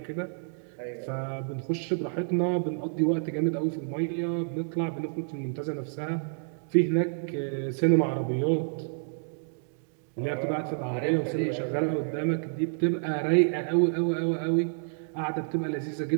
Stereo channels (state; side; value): silent; left; digital silence